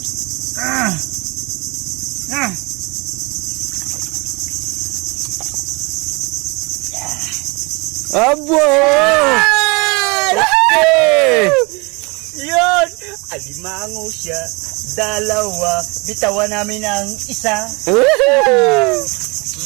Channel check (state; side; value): quieter; left; 28.2 dB